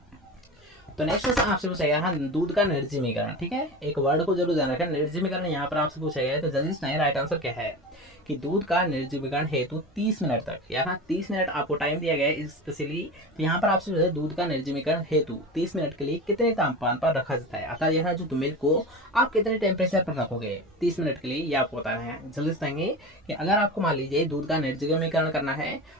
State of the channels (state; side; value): normal; both; correlation 0.29